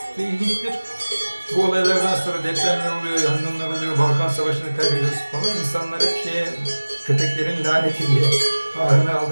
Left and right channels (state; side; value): inverted; both; correlation -1.00